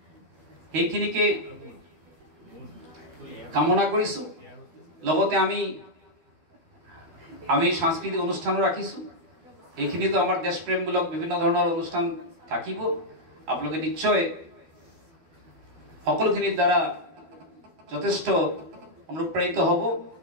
সেইখিনিকে কামনা কৰিছোঁ। লগতে আমি সাংস্কৃতিক অনুষ্ঠানো ৰাখিছোঁ, এইখিনিতো আমাৰ দেশপ্ৰেমমূলক বিভিন্ন ধৰণৰ অনুষ্ঠান থাকিব। আপোনালোকে নিশ্চয় সকলোখিনিৰ দ্বাৰা যথেষ্ট অনুপ্ৰাণিত হ'ব।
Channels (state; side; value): late; left; 13 ms